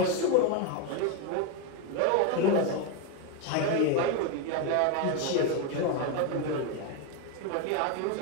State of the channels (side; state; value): both; different; correlation 0.02